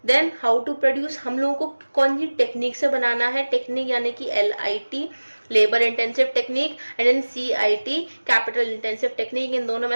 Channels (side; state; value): both; inverted; correlation -1.00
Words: देन हाउ टू प्रोड्यूस हम लोगों को कौन सी टेक्निक से बनाना है, टेक्निक यानी कि LIT labour intensive technique, and then CIT capital intensive technique. इन दोनों में